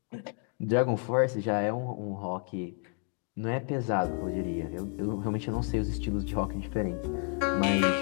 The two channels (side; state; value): right; quieter; 38.0 dB